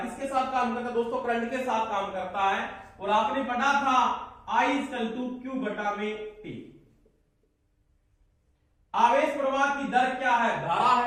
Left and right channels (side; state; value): both; identical; correlation 1.00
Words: किसके साथ काम करता है दोस्तों? करंट के साथ काम करता है। और आपने पढ़ा था I इक्वल टू Q बटा में T। आवेश प्रवाह की दर क्या है? धारा